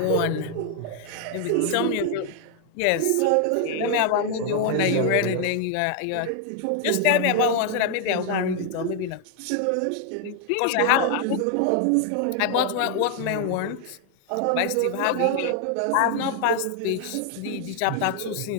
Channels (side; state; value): both; different; correlation 0.00